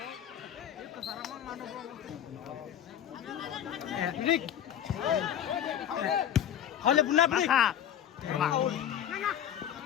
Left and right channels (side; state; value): right; quieter; 10.2 dB